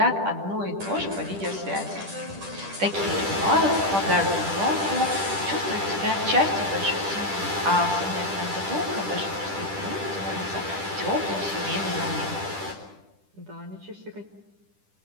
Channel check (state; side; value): late; left; 10 ms